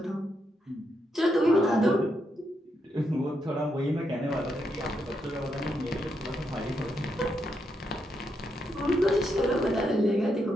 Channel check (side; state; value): both; normal; correlation 0.81